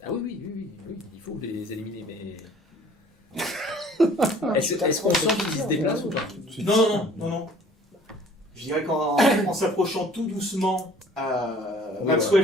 Ah oui, il faut les éliminer, mais. Est-ce qu'on sent qu'ils se déplacent ou pas? Non. Je dirais qu'en s'approchant tout doucement, Maxwell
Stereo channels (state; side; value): normal; both; correlation 0.53